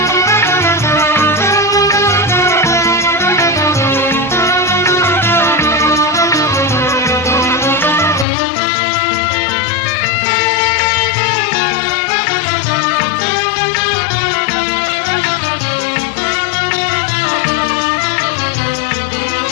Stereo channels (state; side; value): drops out; right; at 8.2 s